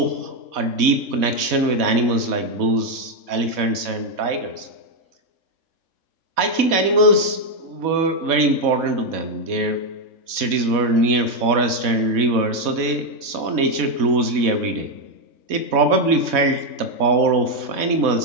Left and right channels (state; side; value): late; left; 4.1 ms